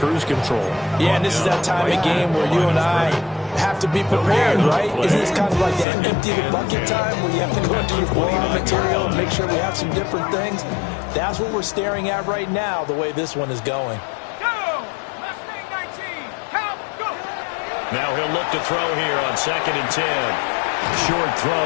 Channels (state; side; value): drops out; right; at 5.9 s